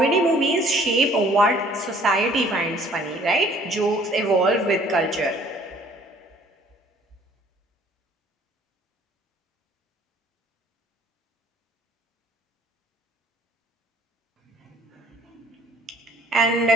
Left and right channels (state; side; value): normal; both; correlation 0.56